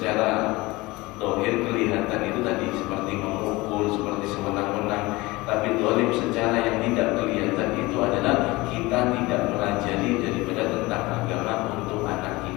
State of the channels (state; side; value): quieter; right; 21.6 dB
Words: zahir kelihatan itu tadi seperti memukul, seperti sewenang-wenang, tapi zalim secara yang tidak kelihatan itu adalah kita tidak melajari daripada tentang agama untuk anak